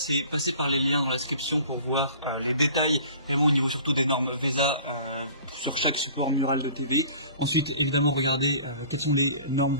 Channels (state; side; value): inverted; both; correlation -0.47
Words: passer par les liens dans la description pour voir les détails, vraiment au niveau surtout des normes VESA sur chaque support mural de TV. Ensuite, évidemment, regardez quelles sont les normes